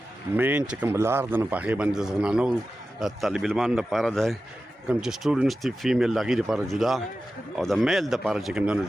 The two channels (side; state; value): both; normal; correlation 0.93